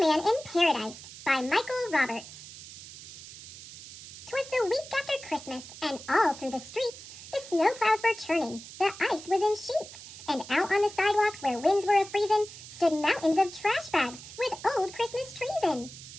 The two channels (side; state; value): right; noise; hiss, 15 dB below the sound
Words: in Paradise by Michael Roberts. 'Twas the week after Christmas, and all through the streets the snow clouds were churning, the ice was in sheets, and out on the sidewalks where winds were a-freezin' stood mountains of trash bags with old Christmas trees in.